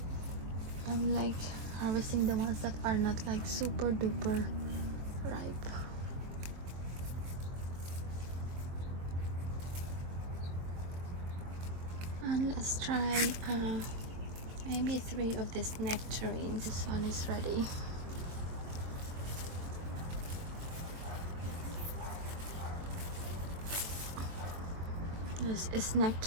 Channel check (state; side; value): late; left; 23 ms